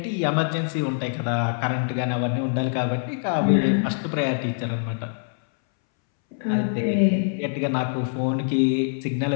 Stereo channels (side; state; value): right; silent; 62 dB below the other